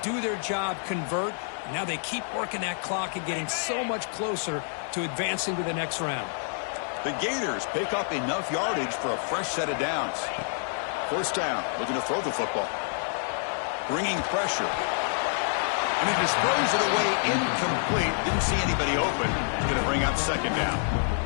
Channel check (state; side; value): silent; right; 59 dB below the other